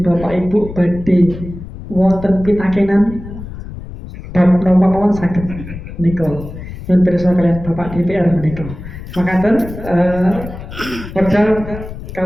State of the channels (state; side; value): noise; left; rumble, 12 dB below the sound